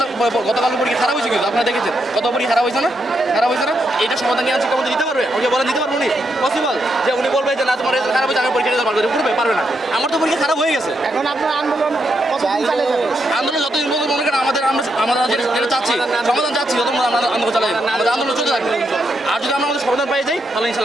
গতকাল পরীক্ষা খারাপ হয়েছে, কিন্তু আপনারা দেখেছেন কত পরীক্ষা খারাপ হয়েছে না, খারাপ হয়েছে না। এইটা সমাধান নিয়ে শিক্ষামন্ত্রী দিতে পারবে? আমাকে বলেন দিতে পারবো উনি? পসিবল যে উনি বলবে যে না তোমার খারাপ হয়েছে, আমি পরীক্ষা দিতে পারবো, করবে পারবে না। আমার তো পরীক্ষা খারাপ হয়ে গেছে। এখন আপনার আন্দোলন কতদিন চালিয়ে যাবে? আন্দোলন যতদিন পর্যন্ত মনে করেন আমরা যেটা চাচ্ছি, সমাধান চাচ্ছি, যত আমরা আন্দোলন চালাই যাবো, আমাদের আন্দোলন চলতে থাকবে। আর যদি আমরা আমাদের সমাধান পাই যাই, তাহলে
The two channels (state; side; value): normal; both; correlation 0.81